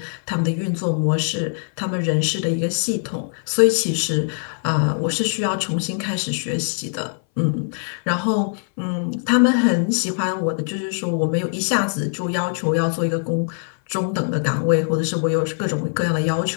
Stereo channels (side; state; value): right; silent; 60 dB below the other